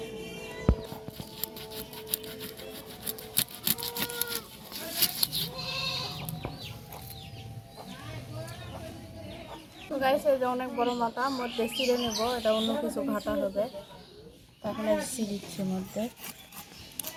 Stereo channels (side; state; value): both; identical; correlation 1.00